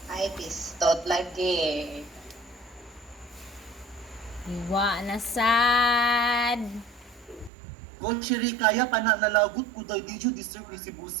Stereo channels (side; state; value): left; drops out; at 7.5 s